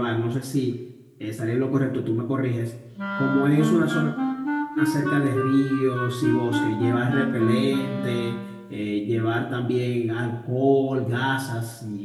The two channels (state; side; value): identical; both; correlation 1.00